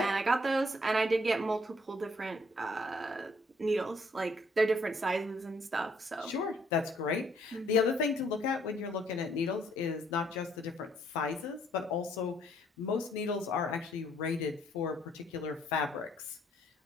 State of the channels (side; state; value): both; normal; correlation 0.66